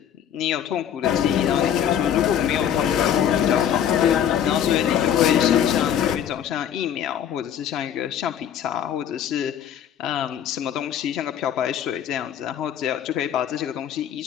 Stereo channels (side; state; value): right; quieter; 9.5 dB